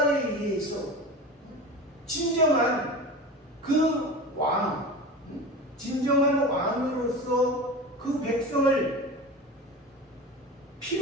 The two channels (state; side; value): normal; both; correlation 0.30